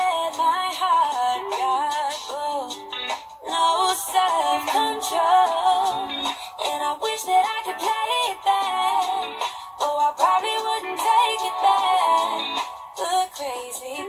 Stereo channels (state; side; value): identical; both; correlation 1.00